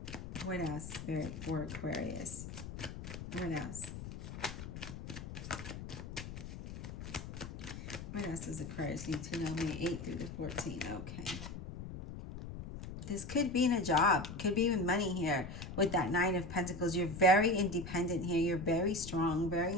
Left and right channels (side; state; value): left; noise; rumble, 9 dB below the sound